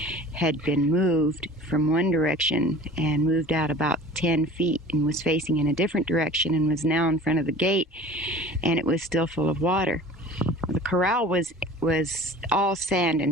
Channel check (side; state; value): both; normal; correlation 0.43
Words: had been moved from one direction and moved out about 10 feet and was facing in a different direction and was now in front of the gate, and it was still full of water. The corral was all sand